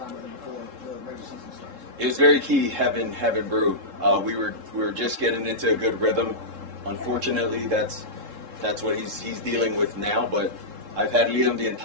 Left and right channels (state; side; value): late; left; 3.7 ms